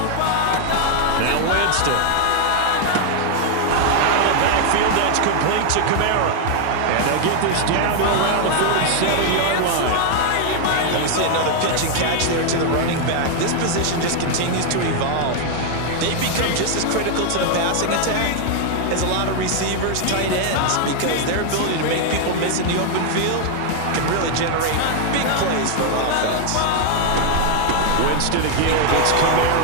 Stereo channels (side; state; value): both; different; correlation 0.00